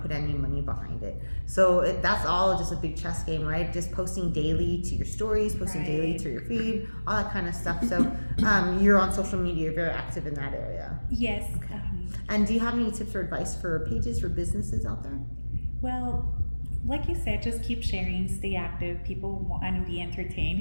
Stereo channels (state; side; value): inverted; both; correlation -1.00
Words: put any money behind it. So that's all just a big chess game, right? Just posting daily to your stories, posting daily to your feed, all that kind of stuff. So you're on social media, you're very active in that area. Yes. Okay. And do you have any tips or advice for pages for businesses out there? Well, like you said, just keep sharing, stay active. People want to be